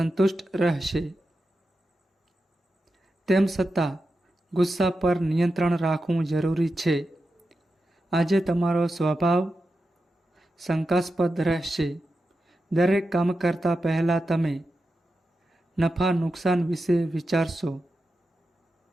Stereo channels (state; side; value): normal; both; correlation 0.90